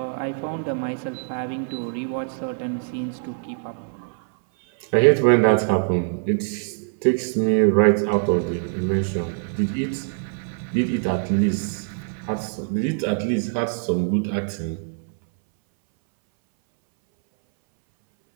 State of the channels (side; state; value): left; silent; 62 dB below the other